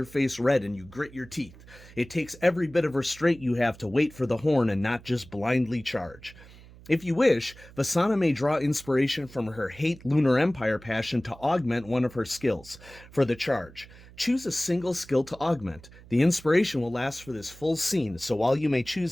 face red and you grit your teeth. It takes every bit of restraint you have to wait for the horn and not just blindly charge. If you wish, Vasana may draw inspiration from her hate Lunar Empire passion to augment one of her skills for the charge. Choose a single skill to augment. The inspiration will last for this full scene, so while you may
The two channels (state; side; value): noise; right; hum, 21 dB below the sound